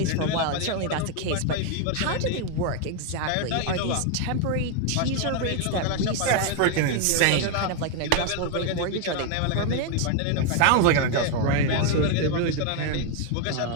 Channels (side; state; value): both; different; correlation 0.01